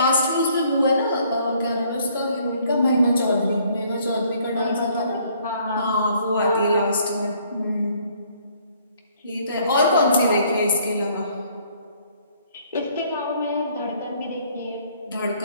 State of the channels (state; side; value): inverted; both; correlation -0.63